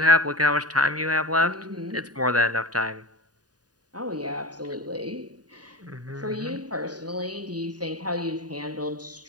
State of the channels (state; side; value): late; left; 0.68 ms